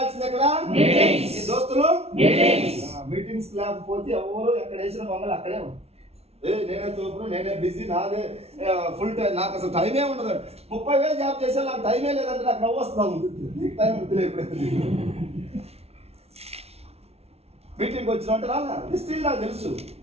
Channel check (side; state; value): left; late; 0.30 ms